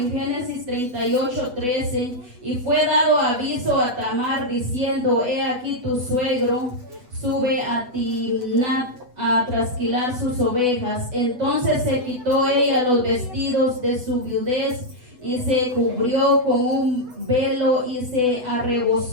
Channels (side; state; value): left; late; 8.0 ms